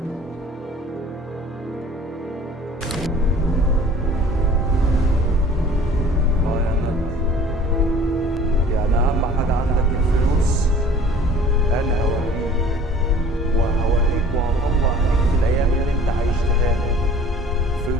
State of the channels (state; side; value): normal; both; correlation 0.49